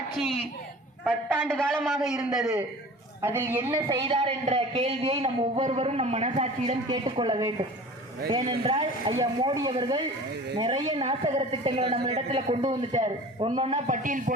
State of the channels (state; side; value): normal; both; correlation 0.41